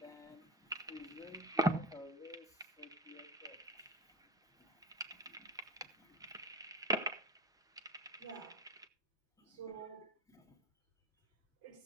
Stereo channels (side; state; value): both; normal; correlation 0.28